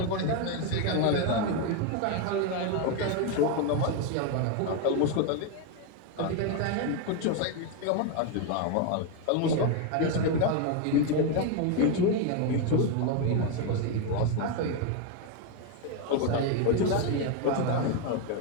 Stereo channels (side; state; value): both; different; correlation 0.02